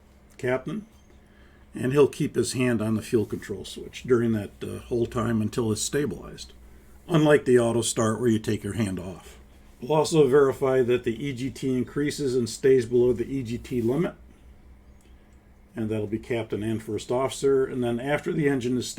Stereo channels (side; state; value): both; identical; correlation 1.00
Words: captain, and he'll keep his hand on the fuel control switch during that whole time until it's stabilized, unlike the auto start where you take your hand off. We'll also verify that the EGT increases and stays below the EGT limit. And that'll be captain and first officer. And then after the engine is